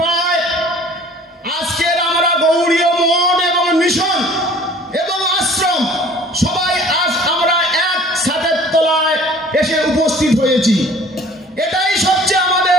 আজকের আমরা গৌড়ীয় মঠ এবং মিশন এবং আশ্রম সবাই আজ আমরা এক ছাদের তলায় এসে উপস্থিত হয়েছি। এটাই সবচেয়ে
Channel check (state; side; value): normal; both; correlation 0.50